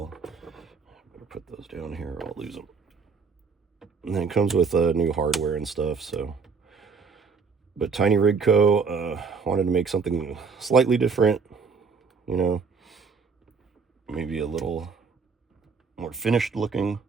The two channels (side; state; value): left; quieter; 5.1 dB